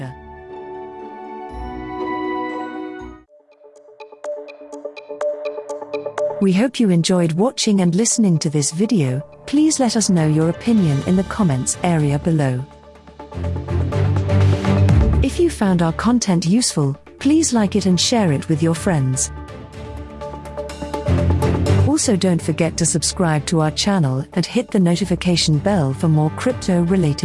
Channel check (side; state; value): both; identical; correlation 1.00